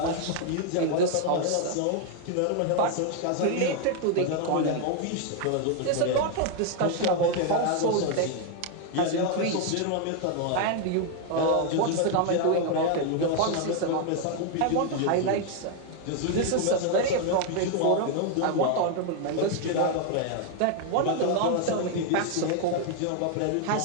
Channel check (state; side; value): different; both; correlation 0.00